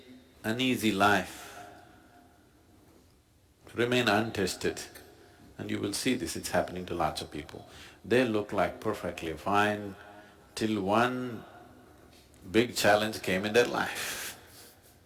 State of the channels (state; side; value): identical; both; correlation 1.00